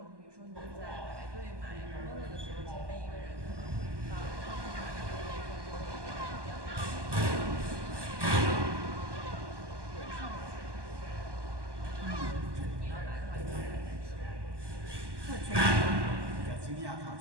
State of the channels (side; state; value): left; late; 1.2 ms